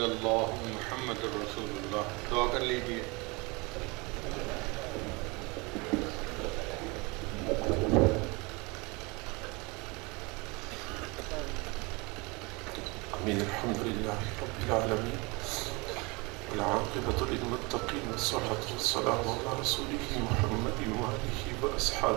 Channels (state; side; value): quieter; left; 27.0 dB